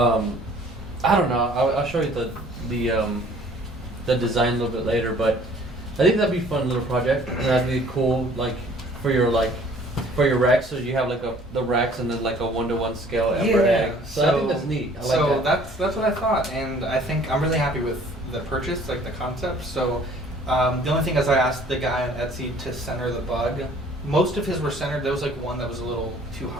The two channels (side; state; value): both; normal; correlation 0.55